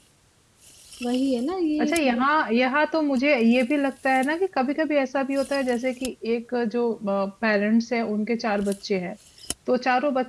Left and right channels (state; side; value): identical; both; correlation 1.00